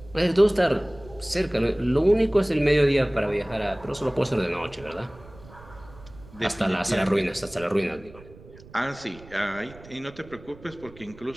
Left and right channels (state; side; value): noise; right; rumble, 21 dB below the sound